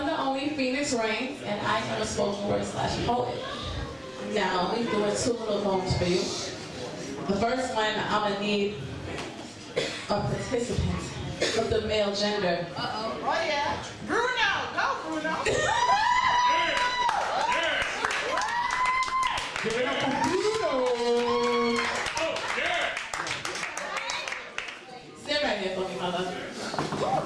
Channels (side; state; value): both; identical; correlation 1.00